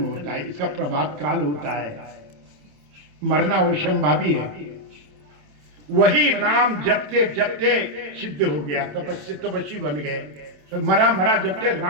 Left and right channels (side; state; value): left; late; 27 ms